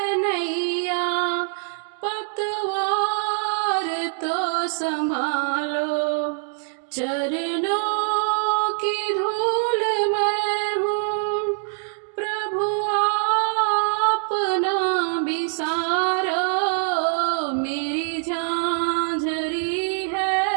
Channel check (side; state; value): left; silent; 60 dB below the other